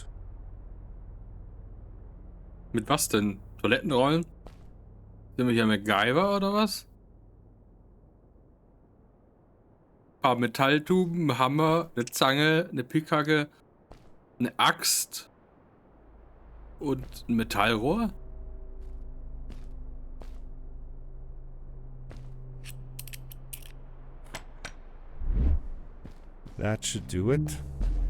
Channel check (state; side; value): identical; both; correlation 1.00